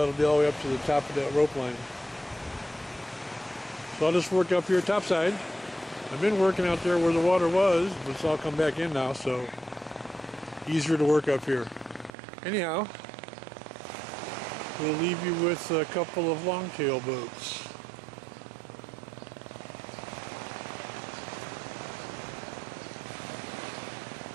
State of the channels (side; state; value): left; drops out; at 12.1 s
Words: be all the way up to the top of that rope line. So I'll just work up here topside. I've been working out there where the water was, but it's all come back in now, so easier to work up here. Anyhow, we'll leave you with a couple of longtail boats.